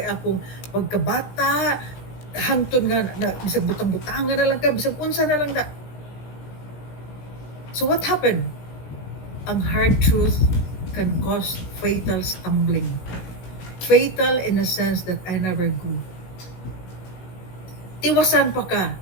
akong pagkabata, hangtod nga na bisag butang-butangan na lang kay, bisag unsa na lang na. So what happened? Ang hard truth can cause fatal stumbling. Fatal in the sense that I never grew. Tiwasan pa ka.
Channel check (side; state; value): right; late; 17 ms